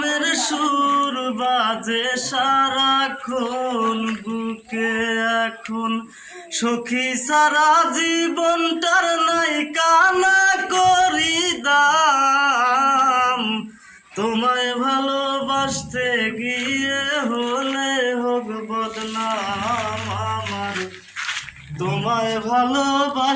সুর বাজে সারাক্ষণ বুকে। এখন সখী সারা জীবনটার নাই কানা করি দাম। তোমায় ভালোবাসতে গিয়ে হলে হোক বদনাম আমার। তোমায়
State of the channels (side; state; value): both; identical; correlation 1.00